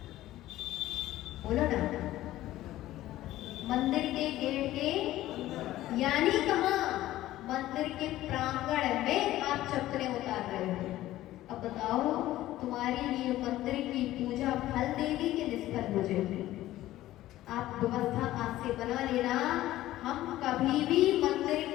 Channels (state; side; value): quieter; right; 15.0 dB